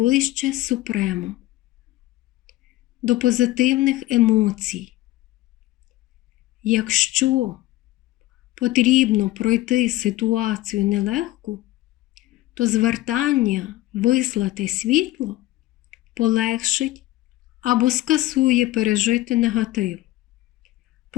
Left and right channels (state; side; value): quieter; right; 16.8 dB